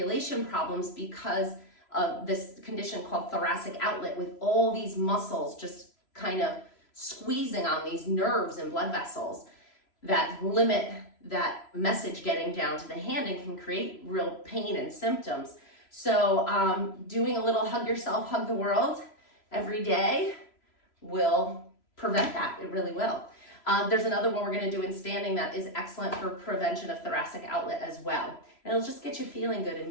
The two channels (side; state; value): right; late; 3.0 ms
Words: problems because of this condition called thoracic outlet, with all these muscles just kind of squeezing on these nerves and blood vessels that limit that message getting down to the hand and can create real pain and symptoms. So doing a little hug yourself, hug the world every day will prevent that. It really will. There's another one we're going to do in standing that is excellent for prevention of thoracic outlet as well. And it'll just get you feeling good and